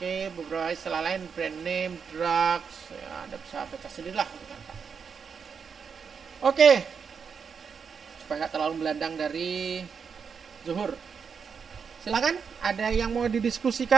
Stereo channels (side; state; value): left; quieter; 6.2 dB